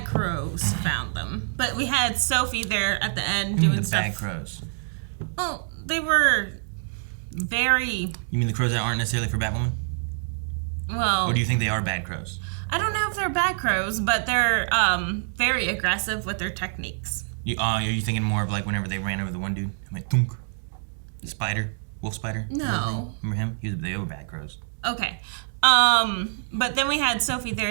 crows found them. But we had Sophie there at the end You mean doing the stuff. bad crows? Well, they were very You mean the crows that aren't necessarily for Batwoman? well. Or do you think they are bad crows? I don't know if they're bad crows, but they're very aggressive with their techniques. Are you thinking more of like whenever they ran over the one dude? I'm like, thunk. The spider, wolf spider. No. Remember him? They were bad crows. Okay. But then we had Sophie there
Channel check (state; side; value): silent; left; 61 dB below the other